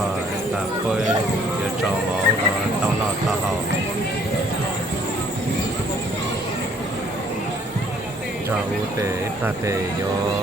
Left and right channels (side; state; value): both; normal; correlation 0.61